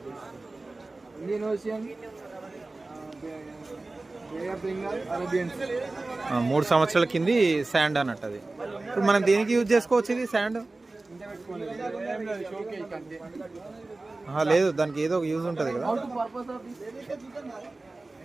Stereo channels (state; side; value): quieter; left; 3.2 dB